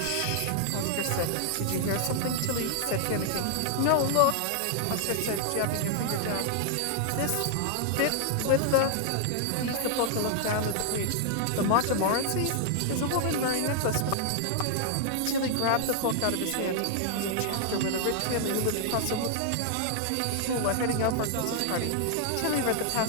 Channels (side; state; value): both; different; correlation 0.00